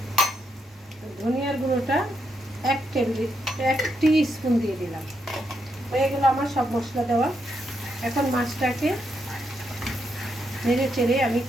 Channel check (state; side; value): normal; both; correlation 0.80